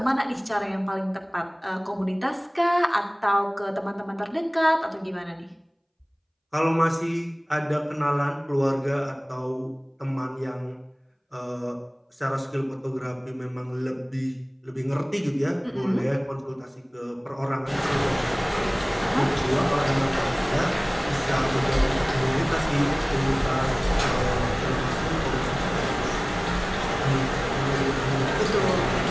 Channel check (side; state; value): both; identical; correlation 1.00